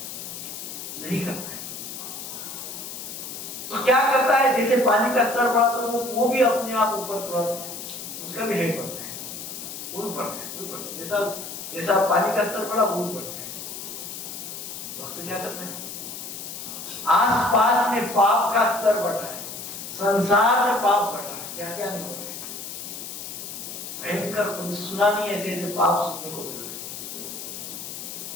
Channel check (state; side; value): noise; left; hiss, 9 dB below the sound